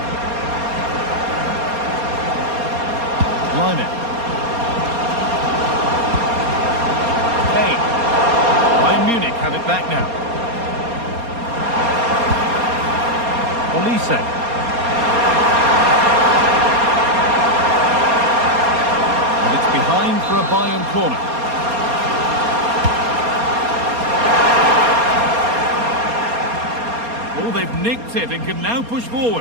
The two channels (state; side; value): late; left; 4.3 ms